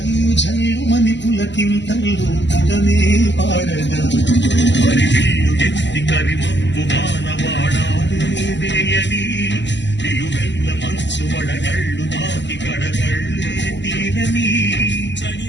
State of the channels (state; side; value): late; right; 0.52 ms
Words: చల్లుమని పులకింతల్లు పుడమే పాడగా మరి విల్లు ఎత్తి కరిమబ్బు మానవాడాలేదేయని నిలువెల్ల మంచు వడగళ్ళు తాకి కడగళ్ళే తీరని